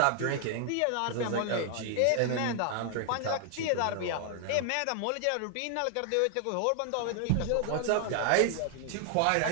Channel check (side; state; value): both; different; correlation 0.00